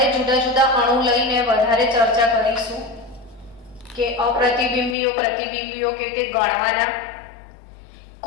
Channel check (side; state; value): right; drops out; at 5.0 s